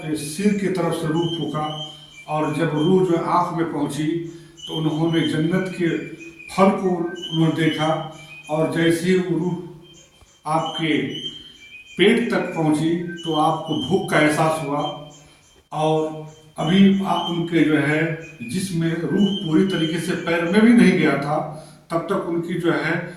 की तरफ से रूह फूका और जब रूह जो आँख में पहुँची तो उन्होंने जन्नत के फल को उन्होंने देखा। और जैसे ही वो रूह आपके पेट तक पहुँची तो आपको भूख का एहसास हुआ। और अभी आप उनके जो है जिसमें रूह पूरी तरीके से पैर में भी नहीं गया था, तब तक उनकी जो है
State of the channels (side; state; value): both; identical; correlation 1.00